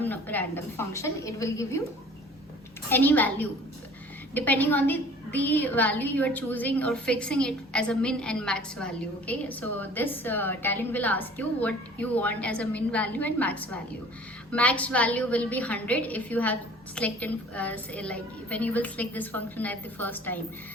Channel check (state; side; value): normal; both; correlation 0.49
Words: function. It will give you any value depending on the value you are choosing or fixing it as a min and max value. Okay, so this talent will ask you what you want as a min value and max value. Max value will be 100 if you have selected say like when you will select this function at the first time.